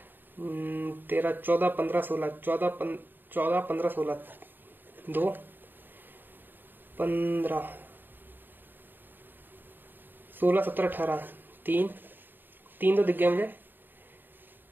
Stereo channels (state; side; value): late; left; 0.093 ms